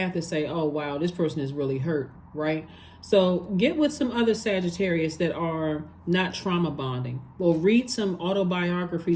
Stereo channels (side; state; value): both; identical; correlation 1.00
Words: to say, oh, wow, this person is really hurt, right? So get with some other Sagittarius that are not trauma bonding. Or read some